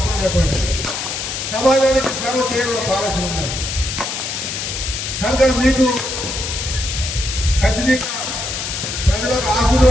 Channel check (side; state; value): left; noise; hiss, 4 dB below the sound